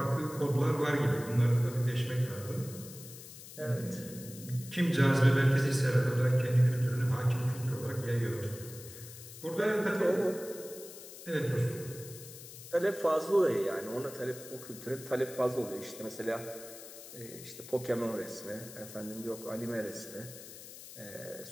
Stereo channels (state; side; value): noise; left; hiss, 15 dB below the sound